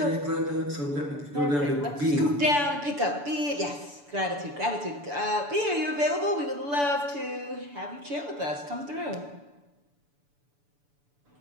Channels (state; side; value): late; left; 7.0 ms